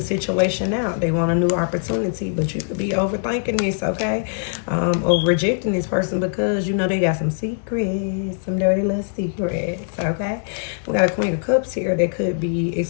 situation out. They want a new opportunity, but you could be overthinking this, okay? Or rejecting this person because, you know, they got some secrets, some dirty little secrets, okay? We got a Queen of Cups here. They could be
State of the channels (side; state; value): right; silent; digital silence